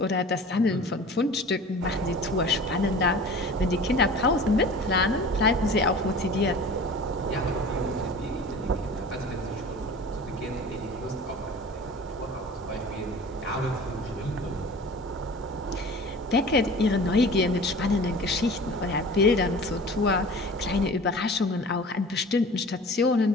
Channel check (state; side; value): normal; both; correlation 0.41